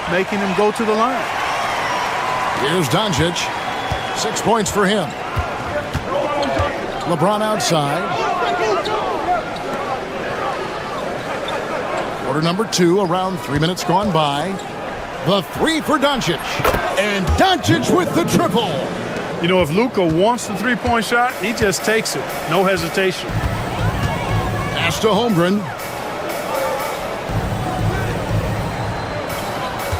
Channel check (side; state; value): both; identical; correlation 1.00